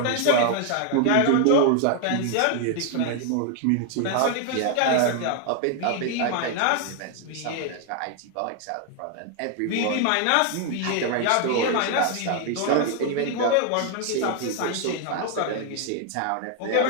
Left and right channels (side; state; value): both; different; correlation 0.01